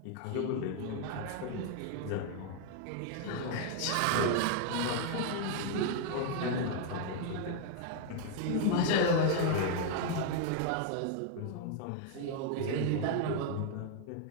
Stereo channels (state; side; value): different; both; correlation 0.00